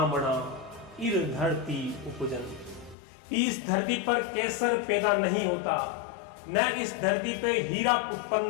इर धरती उपजन। इस धरती पर केसर पैदा नहीं होता, न इस धरती पे हीरा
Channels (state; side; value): drops out; right; at 3.0 s